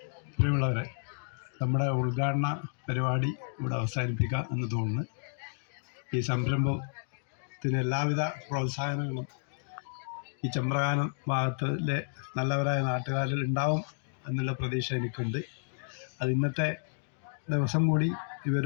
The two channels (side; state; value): right; silent; digital silence